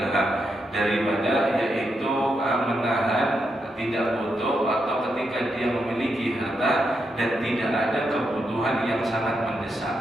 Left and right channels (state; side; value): normal; both; correlation 0.83